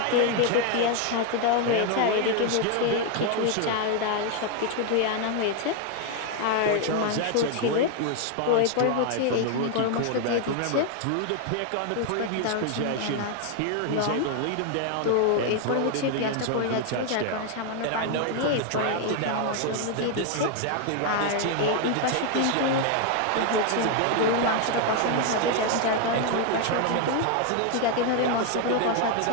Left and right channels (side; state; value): both; different; correlation 0.01